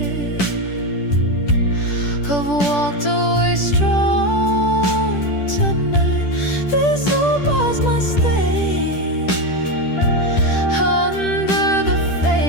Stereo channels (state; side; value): late; right; 10 ms